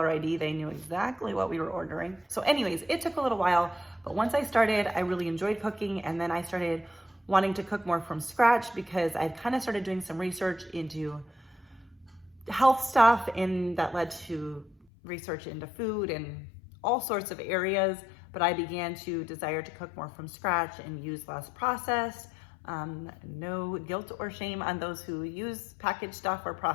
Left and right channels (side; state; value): right; drops out; at 14.9 s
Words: ID, they knew exactly what we were ordering. So anyways, it took a little while, but once I started, I really enjoyed cooking. And then I started wanting to cook more from scratch because I'd kind of started doing some research into health stuff, and that led to research into food and all sorts of areas. But I began to desire to cook more from scratch and use less processed. No guilt or shame on those who use packaged stuff or